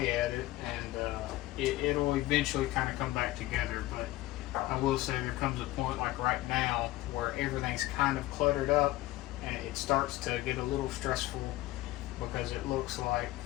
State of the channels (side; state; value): right; quieter; 17.1 dB